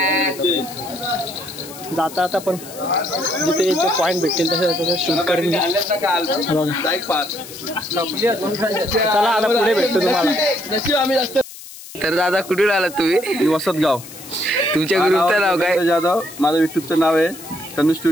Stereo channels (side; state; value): left; noise; hiss, 15 dB below the sound